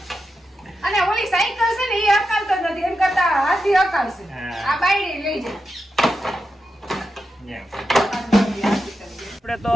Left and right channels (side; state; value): both; normal; correlation 0.88